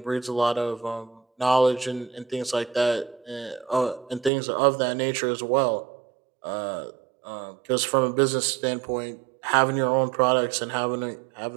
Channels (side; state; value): left; drops out; at 4.3 s